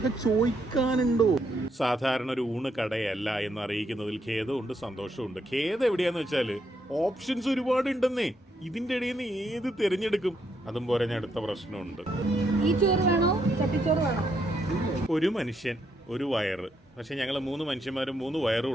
ചോദിക്കാനുണ്ടോ? സാധാരണ ഒരു ഊണ് കടയല്ല എന്ന് അറിയിക്കുന്നതിൽ ഖേദമുണ്ട്, സന്തോഷമുണ്ട്. ഖേദം എവിടെയാന്ന് വെച്ചാൽ ഓപ്ഷൻസ് ഒരുപാട് ഉണ്ടെന്നേ. ഇതിന്റെ ഇടയിൽ നിന്ന് ഏത് തിരഞ്ഞെടുക്കും? അതും പോലെ അടുത്ത പ്രശ്നമുണ്ട്. ഒരു മനുഷ്യൻ ഒരു വയറ്. പക്ഷെ ഞങ്ങൾ 3 മനുഷ്യന്മാരും 3 വയറും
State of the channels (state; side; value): normal; both; correlation 0.76